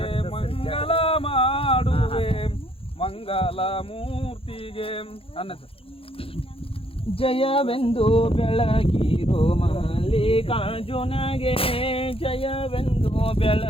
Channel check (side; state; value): right; late; 0.27 ms